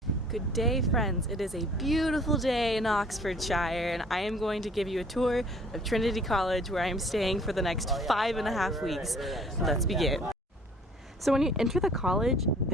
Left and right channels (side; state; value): both; normal; correlation 0.54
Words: Good day, friends. It is a beautiful day in Oxfordshire, and I am going to give you a tour of Trinity College, where I am staying for the next 5.5 weeks. Let's begin. So when you enter the college,